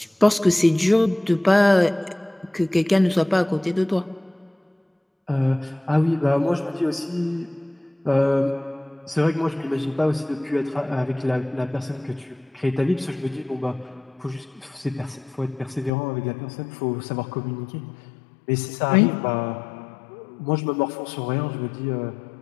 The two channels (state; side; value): drops out; right; at 15.9 s